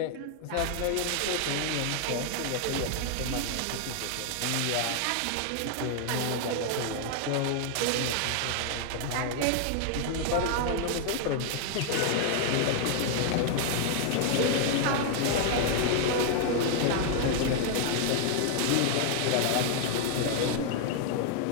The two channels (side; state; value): both; different; correlation 0.00